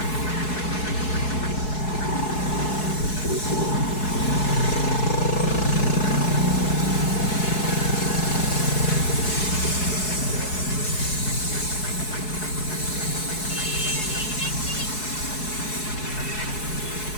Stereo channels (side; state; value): right; late; 4.7 ms